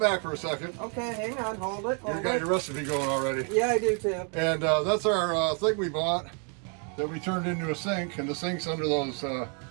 for a second. Okay, hang on, hold it. You got your recipe going already. Yeah, I do too. And that's our thing we bought that we turned into a sink, and the sink's under those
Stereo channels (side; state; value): left; quieter; 39.8 dB